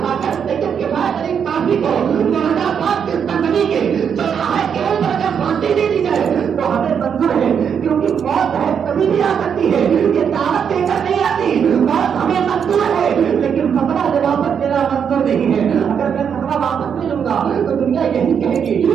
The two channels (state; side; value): quieter; left; 7.5 dB